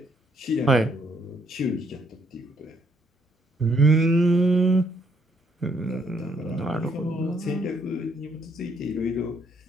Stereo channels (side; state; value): both; normal; correlation 0.70